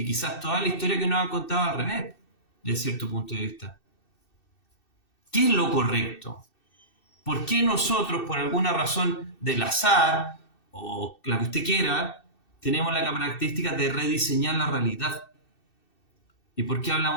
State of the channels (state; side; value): late; right; 2.6 ms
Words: quizás toda la historia que nos han contado al revés, de cierto punto de vista. ¿Qué es lo correcto? ¿Por qué nosotros, por alguna razón del azar, o la que usted quiera, tenemos la característica de rediseñar la realidad? ¿Y por qué